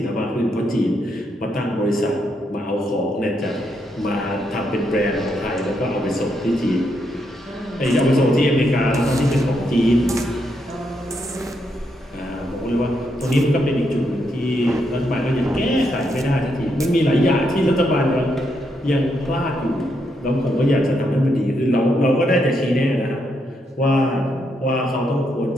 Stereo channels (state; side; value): normal; both; correlation 0.79